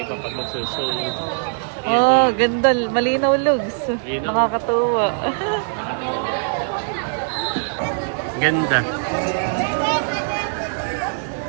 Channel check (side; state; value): left; silent; 57 dB below the other